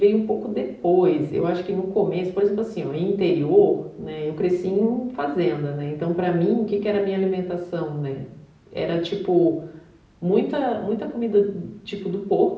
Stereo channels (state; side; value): identical; both; correlation 1.00